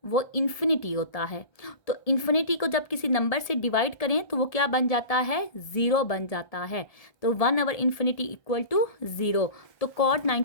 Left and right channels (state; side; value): late; right; 1.7 ms